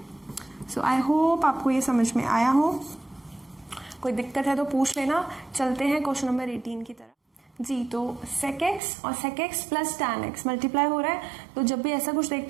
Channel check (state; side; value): drops out; left; at 8.8 s